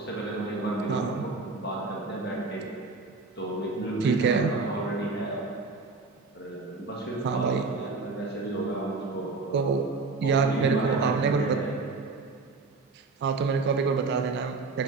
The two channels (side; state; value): left; quieter; 4.0 dB